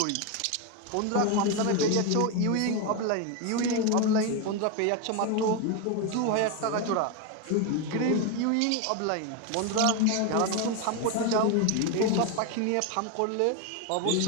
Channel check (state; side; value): different; both; correlation 0.02